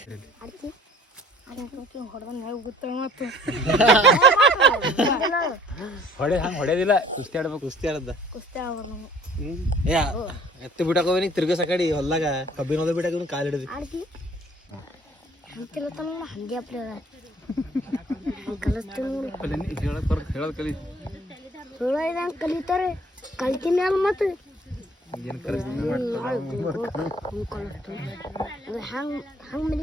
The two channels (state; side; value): normal; both; correlation 0.54